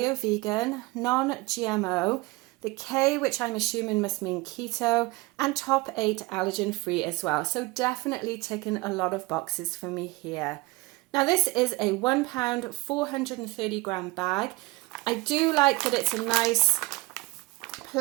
vegan, non-GMO, the K, which I'm assuming must mean keto, and top 8 allergen free as well. So definitely ticking a lot of boxes for me here. Now this is a 1 pound 430 gram bag. I do like that it's a nice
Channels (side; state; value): left; quieter; 22.3 dB